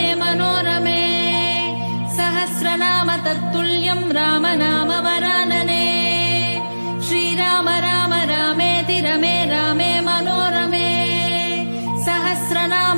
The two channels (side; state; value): both; inverted; correlation -1.00